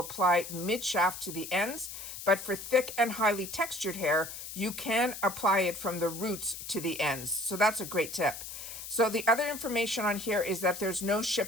mid-shaft to the ends. But for thick and highly textured hair, you can apply it from the roots to the ends. So that's a great tip. So the other information on here is that there's no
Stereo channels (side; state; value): left; noise; hiss, 10 dB below the sound